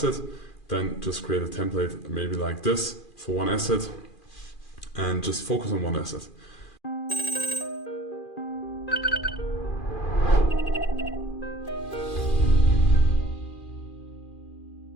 Then just create a template maybe like this for one asset and just focus on one asset.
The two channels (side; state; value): right; late; 2.4 ms